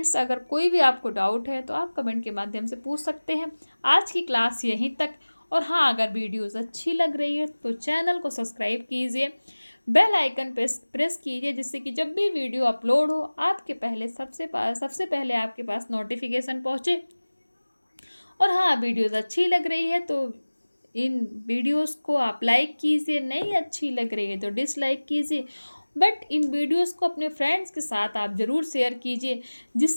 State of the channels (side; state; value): both; inverted; correlation -1.00